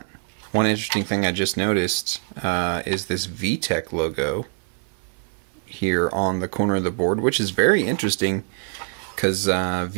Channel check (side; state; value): left; silent; 63 dB below the other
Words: One interesting thing I just noticed is this Vtec logo here on the corner of the board, which is very interesting because